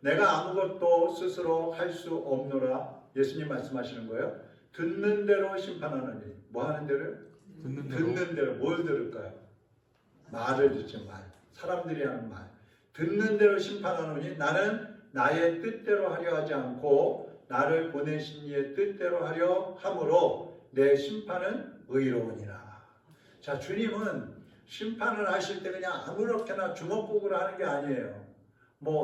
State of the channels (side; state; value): both; identical; correlation 1.00